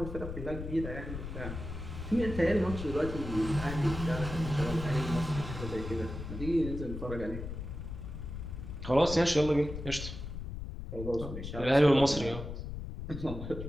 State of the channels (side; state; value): left; noise; rumble, 7 dB below the sound